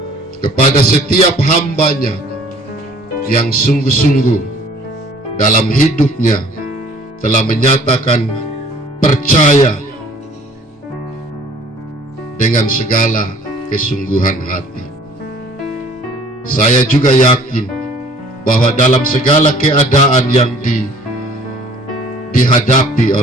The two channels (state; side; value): normal; both; correlation 0.53